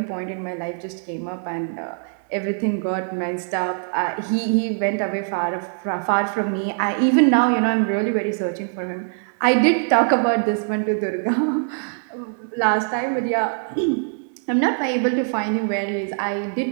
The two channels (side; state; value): left; silent; digital silence